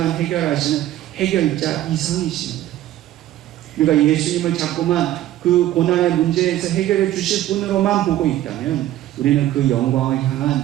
해결하시는 해결자 이상이십니다. 우리가 예수님을 자꾸만 그 고난의 문제에서 해결해 주실 분으로만 보고 있다면 우리는 그 영광을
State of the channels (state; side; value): quieter; left; 13.7 dB